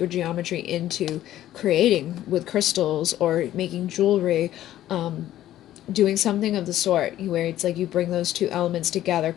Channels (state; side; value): quieter; right; 13.1 dB